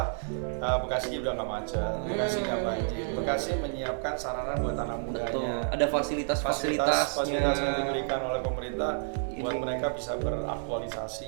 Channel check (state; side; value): silent; left; digital silence